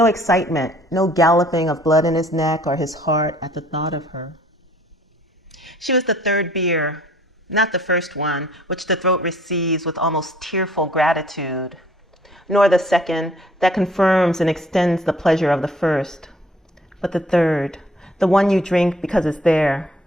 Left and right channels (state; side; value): normal; both; correlation 0.58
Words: excitement, no galloping of blood in his neck or his heart at the thought of her. She was the 3rd beer, not the first one, which the throat receives with almost tearful gratitude, nor the 2nd that confirms and extends the pleasure of the first, but the 3rd, the one you drink because it's there,